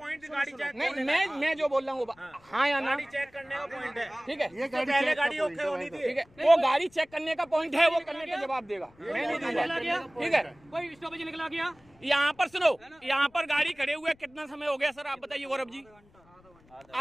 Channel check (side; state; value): left; noise; rumble, 29 dB below the sound